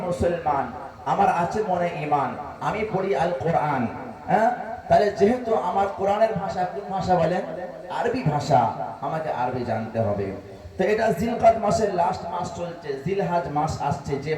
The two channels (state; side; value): identical; both; correlation 1.00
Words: মুসলমান, আমার আছে মনে ঈমান, আমি পড়ি আল কোরআন, হ্যাঁ, তাহলে যেহেতু আমার কোরআনের ভাষা কোন ভাষা বলেন? আরবি ভাষা, আমাকে আরবি জানতে হবে। তো এটা জিলকদ মাসের লাস্ট মাস চলছে, জিলহজ মাস আসছে, যে